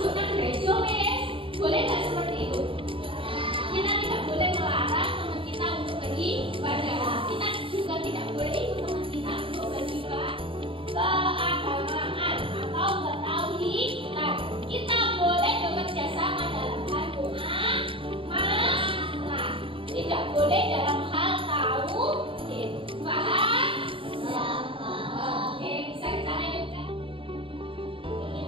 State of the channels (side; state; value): left; late; 0.25 ms